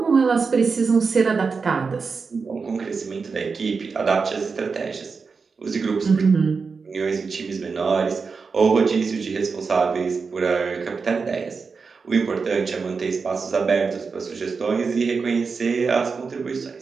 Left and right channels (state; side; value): quieter; left; 4.9 dB